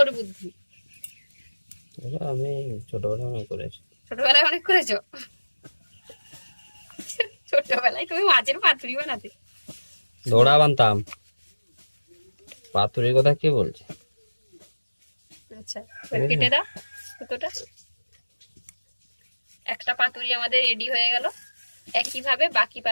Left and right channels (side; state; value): both; inverted; correlation -1.00